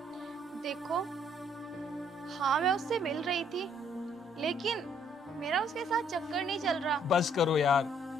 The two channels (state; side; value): normal; both; correlation 0.65